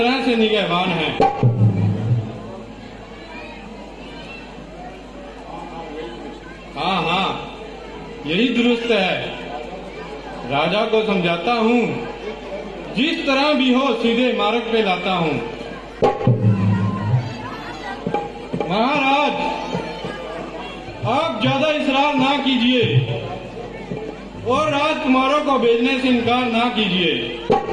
से निगहबान हैं। हाँ हाँ, यही दुरुस्त है। राजा को समझाता हूँ, जिस तरह भी हो सीधे मार्ग पे लाता हूँ। महाराज, आप ज्यादा इसरार ना कीजिए और राजकुमारों को भेजने से इनकार ना कीजिए।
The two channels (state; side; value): identical; both; correlation 1.00